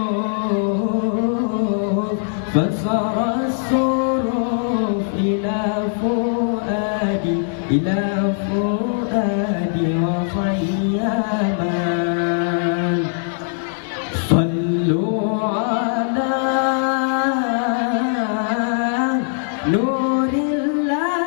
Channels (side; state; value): right; silent; digital silence